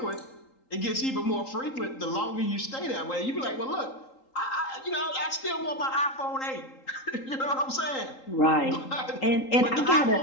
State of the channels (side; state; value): right; late; 3.8 ms